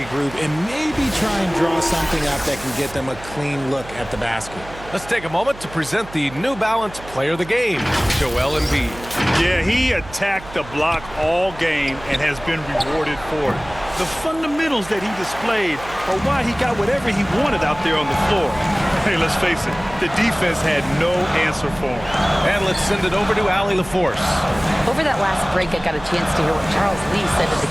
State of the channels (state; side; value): noise; right; hum, 17 dB below the sound